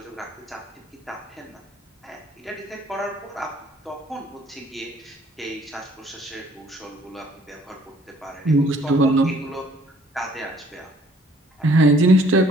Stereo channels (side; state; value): both; normal; correlation 0.59